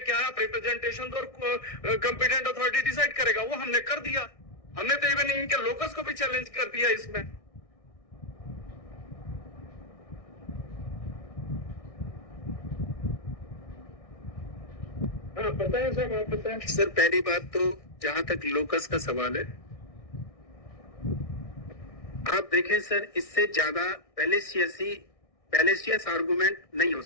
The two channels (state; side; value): late; right; 1.6 ms